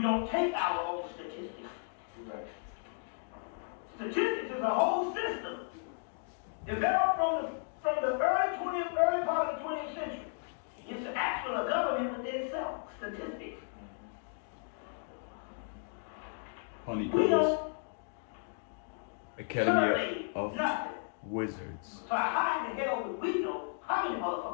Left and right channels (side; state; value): right; silent; 55 dB below the other